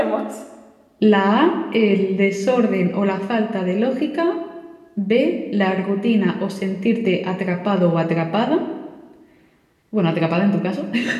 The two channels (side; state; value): both; identical; correlation 1.00